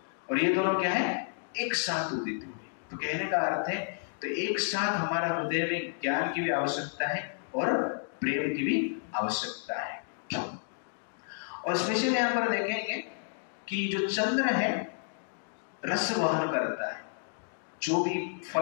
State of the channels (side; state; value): right; silent; digital silence